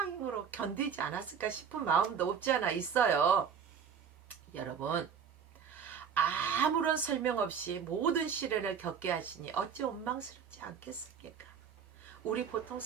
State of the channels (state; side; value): quieter; left; 7.2 dB